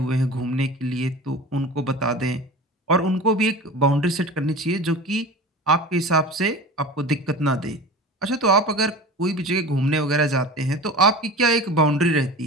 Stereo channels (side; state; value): both; normal; correlation 0.35